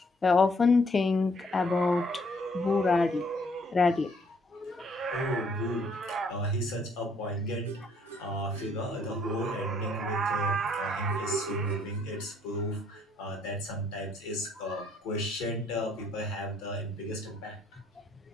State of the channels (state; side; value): normal; both; correlation 0.66